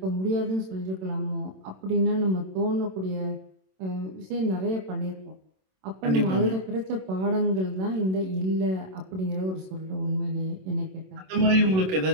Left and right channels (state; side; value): late; left; 27 ms